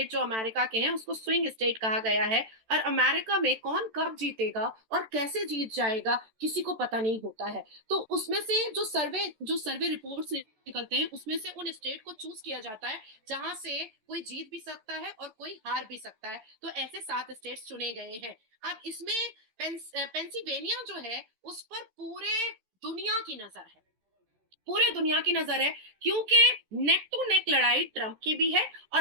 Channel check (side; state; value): left; late; 13 ms